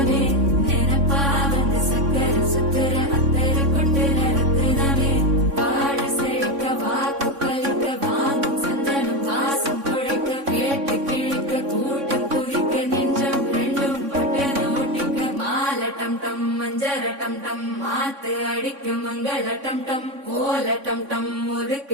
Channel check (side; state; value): left; late; 3.6 ms